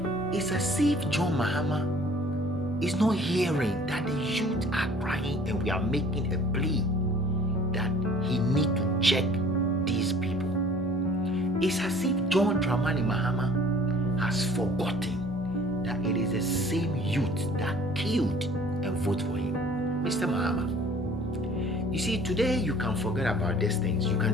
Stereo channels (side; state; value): right; noise; rumble, 24 dB below the sound